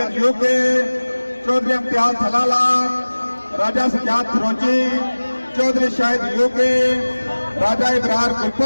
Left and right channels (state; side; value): inverted; both; correlation -1.00